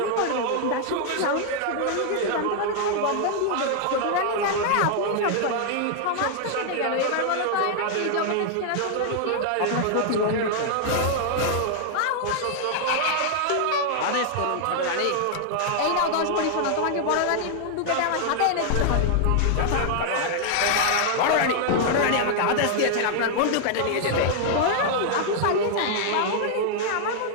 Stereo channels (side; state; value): both; different; correlation 0.00